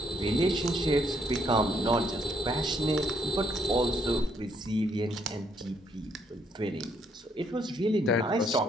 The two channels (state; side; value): normal; both; correlation 0.71